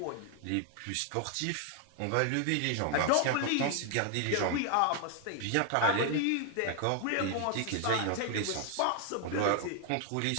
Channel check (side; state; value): both; different; correlation 0.00